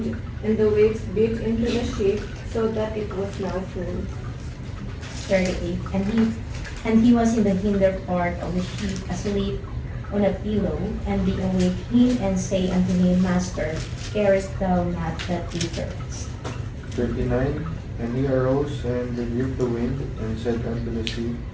and the waves beat into the ship, so that it was now full. 38. And he was in the hinder part of the ship, asleep on a pillow, and they awake him and say unto him, Master, carest thou not that we perish? 39. And he arose and rebuked the wind, and said unto the sea,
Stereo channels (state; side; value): identical; both; correlation 1.00